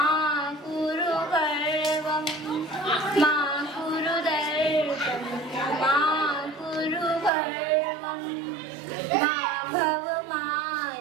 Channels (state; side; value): drops out; left; at 7.3 s